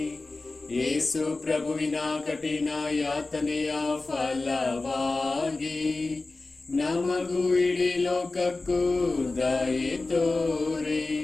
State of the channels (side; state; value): right; quieter; 3.4 dB